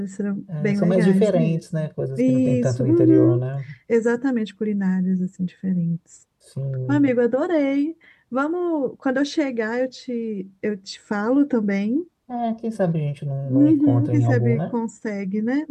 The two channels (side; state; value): both; identical; correlation 1.00